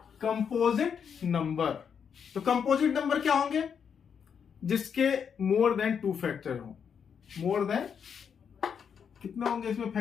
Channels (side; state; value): right; quieter; 7.2 dB